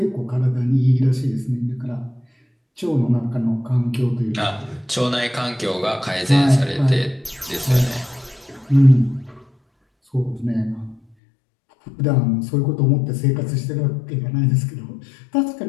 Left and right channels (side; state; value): right; drops out; at 11.2 s